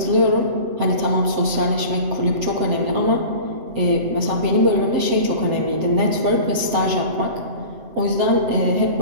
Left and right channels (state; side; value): late; left; 7.6 ms